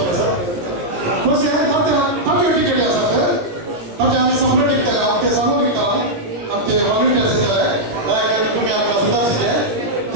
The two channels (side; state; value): left; late; 17 ms